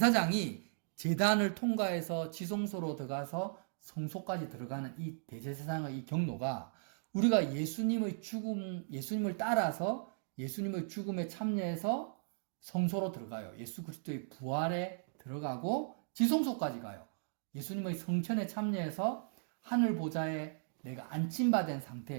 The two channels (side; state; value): left; silent; digital silence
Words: 제단을 통과해서 지성소로 들어가서 성소까지 들어가는 이 대제사장의 이 경로가 우리가 예수님의 죽음, 예수님을 따라서 예수님의 죽음에 참여해서 성소로 들어가요. 예수 그리스도의 부활에 들어가고 지성소까지 가요. 예수님의 성천에 참여해서 하늘 보좌에 내가 안침받은